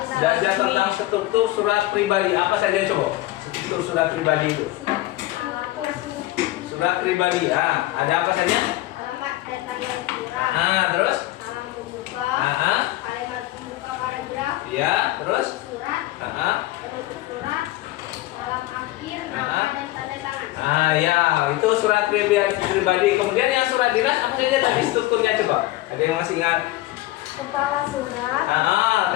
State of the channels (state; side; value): quieter; right; 17.0 dB